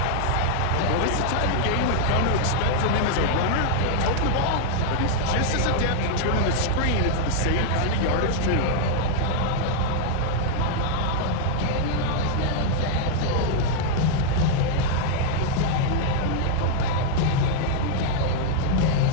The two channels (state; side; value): different; both; correlation 0.00